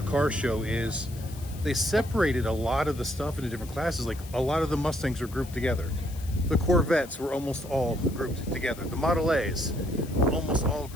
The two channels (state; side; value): noise; left; hiss, 19 dB below the sound